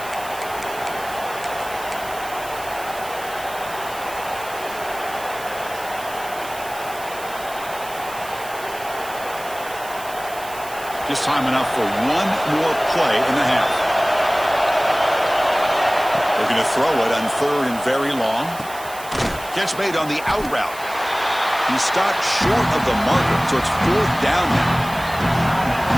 Just time enough for one more play in the half. Looking to throw it on third and very long. Catch made on the out route. He stopped short of the marker, so it's fourth down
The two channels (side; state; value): right; noise; hiss, 15 dB below the sound